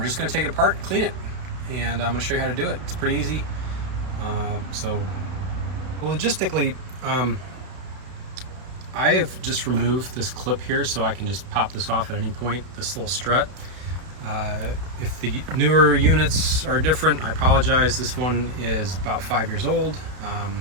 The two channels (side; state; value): left; late; 32 ms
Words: just going to take it apart and clean it. And I'm going to show you how to do it. It's pretty easy. Logistically, I have just removed this clip here so I can just pop this off at any point, this little strut. If the newer units are different, I apologize. This one is about 5 years old,